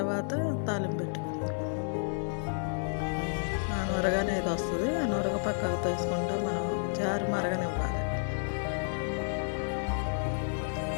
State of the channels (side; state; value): right; silent; digital silence